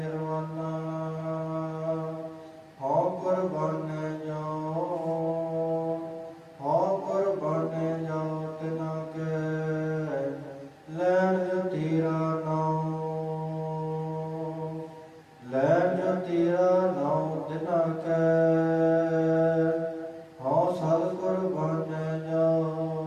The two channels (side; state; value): both; identical; correlation 1.00